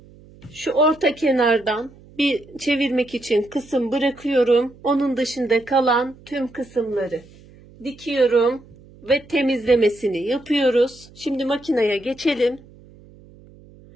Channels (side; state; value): right; noise; hum, 24 dB below the sound